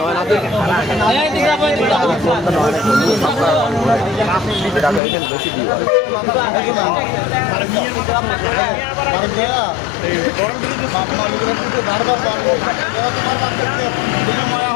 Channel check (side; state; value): right; drops out; at 5.0 s